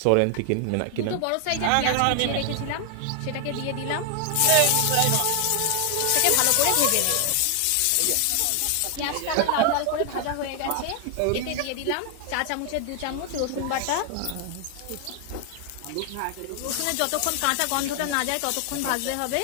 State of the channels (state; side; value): different; both; correlation 0.00